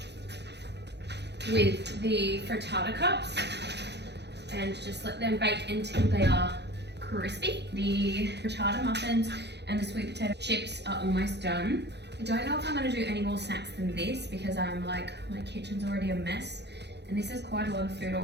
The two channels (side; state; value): left; late; 0.50 ms